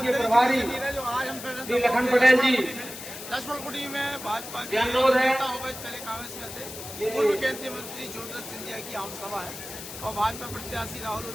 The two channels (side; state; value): left; noise; hiss, 11 dB below the sound